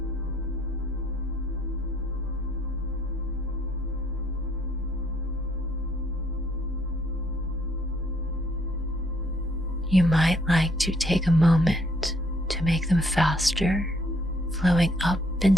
You might like to take a moment to make them faster, flowing up and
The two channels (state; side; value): normal; both; correlation 0.66